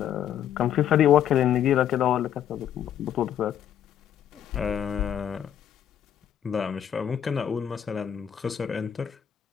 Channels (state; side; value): quieter; right; 9.7 dB